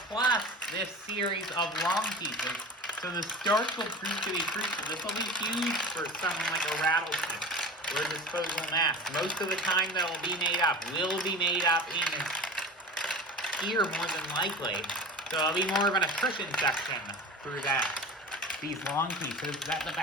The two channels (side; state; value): both; normal; correlation 0.33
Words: plus this series of long pieces. So the starts will prove to be crucial. This will be huge for someone like a Rattlesnake or a Disposable Mask. Most of the time that will be made up in here more than likely. So it'll be more of an attrition section through that. These long pieces that the